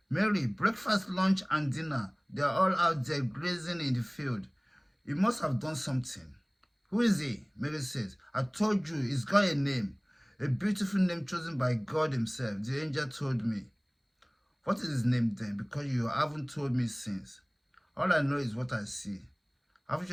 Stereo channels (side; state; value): both; identical; correlation 1.00